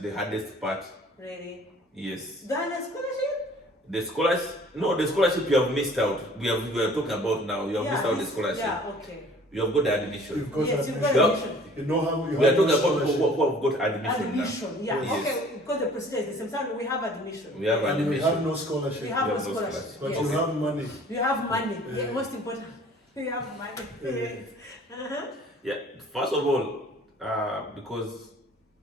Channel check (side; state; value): both; normal; correlation 0.51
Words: hardest part. Really? Yes. The scholarship? The scholarship you have missed out. We are talking about now. You have missed out the scholarship. Yeah, okay. You have got the admission. You've got Yes, you've admission. got admission. You know how you We are have talking no about scholarship. who have got admission Admission, yeah. Yes. Okay, because the procedure is the same. So we have admission. We have And we admission. have no scholarship. We have You no have no scholarship. scholarship. But Yes. you have money. You have money. Yeah. Yeah, most important. You have money. Yes. Uh-huh. Yeah. First of all, because